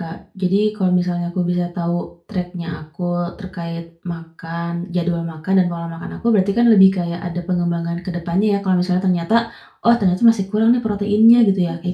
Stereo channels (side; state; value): both; identical; correlation 1.00